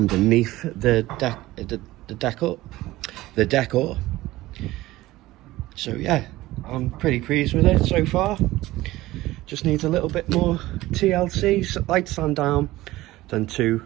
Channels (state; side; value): quieter; left; 17.4 dB